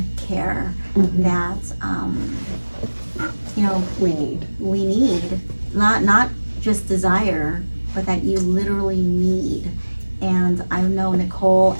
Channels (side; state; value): both; inverted; correlation -1.00